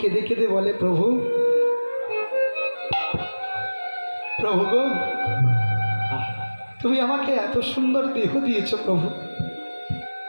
কেঁদে বলে, প্রভু প্রভু গো, তুমি আমাকে এত সুন্দর দেহ দিয়েছ প্রভু,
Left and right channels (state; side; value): inverted; both; correlation -1.00